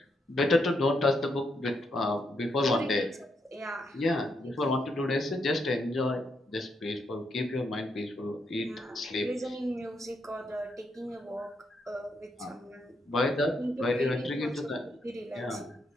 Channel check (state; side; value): normal; both; correlation 0.79